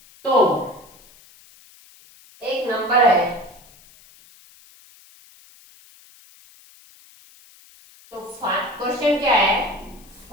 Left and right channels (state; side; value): noise; left; hiss, 26 dB below the sound